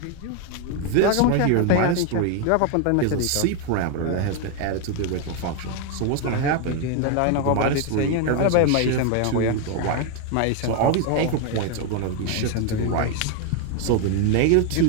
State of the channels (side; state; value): both; different; correlation 0.01